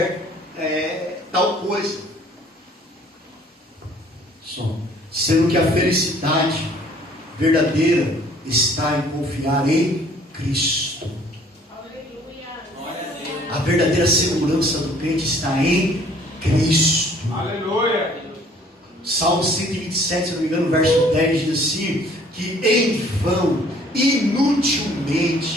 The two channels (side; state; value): both; normal; correlation 0.56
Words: tal coisa. Sendo que a felicidade verdadeira está em confiar em Cristo. A verdadeira segurança do crente está em Cristo. Aleluia. Salmo 127, se não me engano, verso 10 diz assim, que em vão,